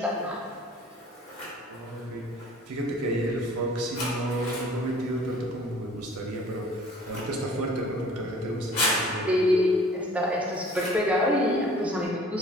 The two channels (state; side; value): normal; both; correlation 0.50